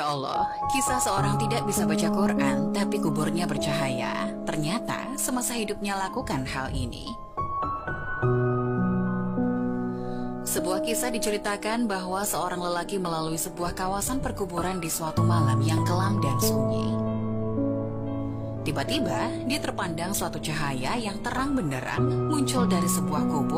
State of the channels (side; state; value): both; identical; correlation 1.00